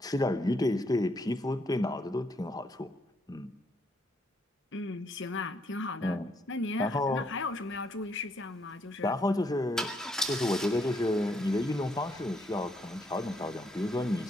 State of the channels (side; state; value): both; normal; correlation 0.73